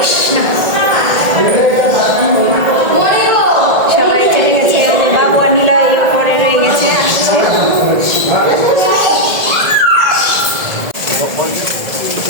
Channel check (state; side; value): late; left; 1.8 ms